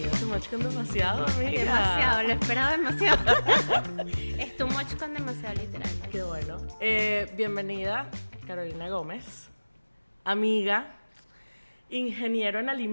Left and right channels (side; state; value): both; inverted; correlation -1.00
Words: a Too Much con Demasiado, amiga. Demasiado, lo esperaba demasiado. Es too much con demasiado literal. Qué bueno. Bienvenida, Carolina Gómez, amiga, ingeniero en